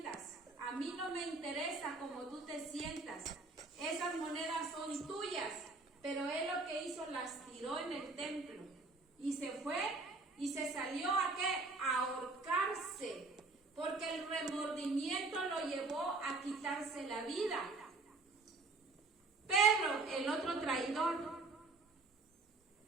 A mí no me interesa cómo tú te sientas. Esas monedas son tuyas. Pero él lo que hizo, las tiró en el templo. Y se fue y se salió a ¿qué? A ahorcarse. Porque el remordimiento lo llevó a quitarse la vida. Pedro, el otro traidor,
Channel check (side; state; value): left; quieter; 3.6 dB